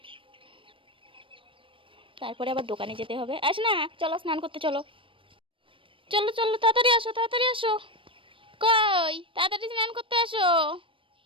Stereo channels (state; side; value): late; left; 0.25 ms